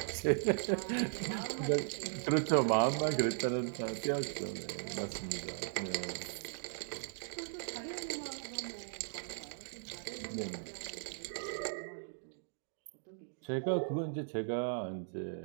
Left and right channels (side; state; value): left; silent; digital silence